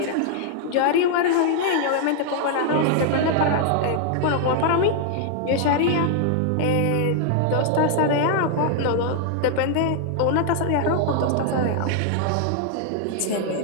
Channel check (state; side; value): different; both; correlation 0.00